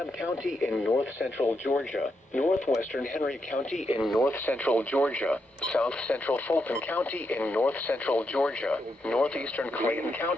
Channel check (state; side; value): normal; both; correlation 0.82